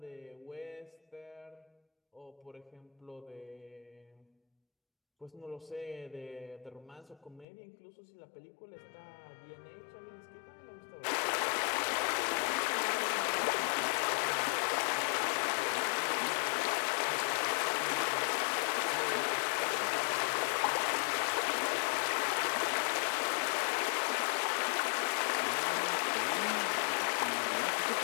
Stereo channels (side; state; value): right; drops out; at 7.5 s